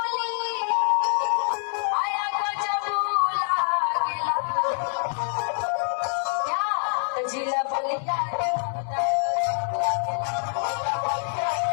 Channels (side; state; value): right; silent; 61 dB below the other